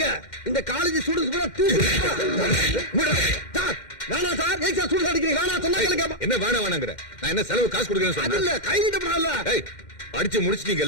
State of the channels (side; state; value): right; late; 2.1 ms